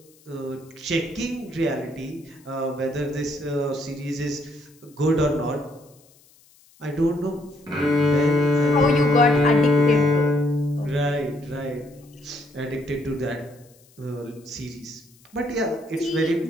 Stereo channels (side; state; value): left; noise; hiss, 29 dB below the sound